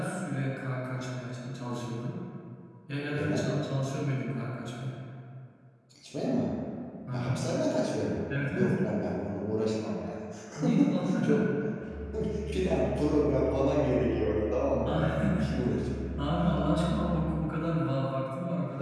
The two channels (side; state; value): both; identical; correlation 1.00